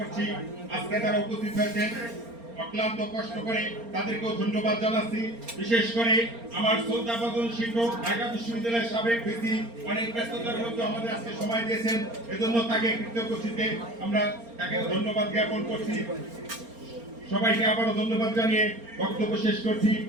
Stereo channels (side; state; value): left; late; 4.3 ms